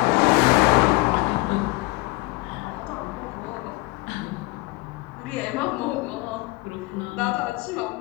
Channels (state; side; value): quieter; right; 22.8 dB